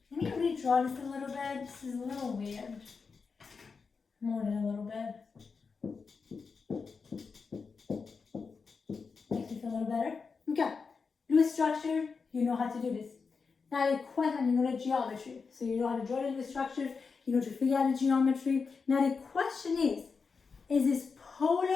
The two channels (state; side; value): quieter; right; 5.1 dB